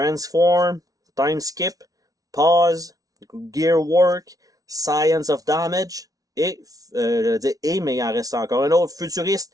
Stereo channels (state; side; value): late; left; 0.18 ms